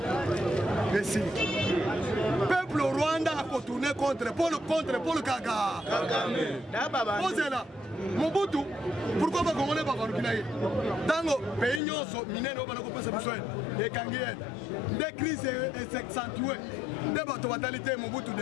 Merci. Peuple Rwanda a contourné contre Paul Kagame. Posez là. Mobutu, pourquoi pas Congolais pas Congolais? Dans le pays nyonso minene obana ko pesa biso et kangienne. Des crises s'accentuent. Des bateaux fatalité Mobutu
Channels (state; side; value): drops out; right; at 11.8 s